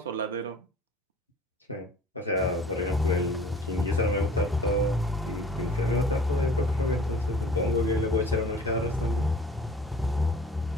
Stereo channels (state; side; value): normal; both; correlation 0.48